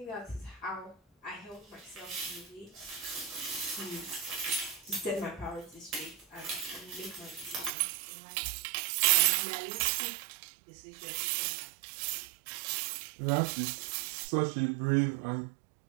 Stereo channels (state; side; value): drops out; left; at 7.7 s